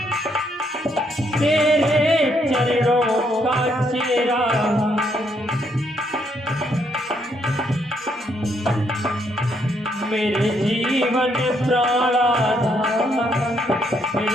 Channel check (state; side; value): normal; both; correlation 0.73